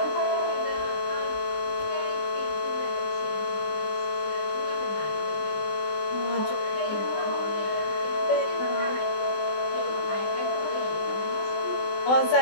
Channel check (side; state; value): right; late; 19 ms